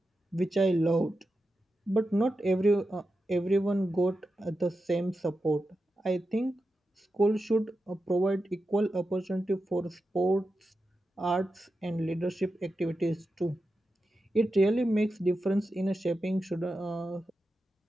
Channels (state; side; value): normal; both; correlation 0.90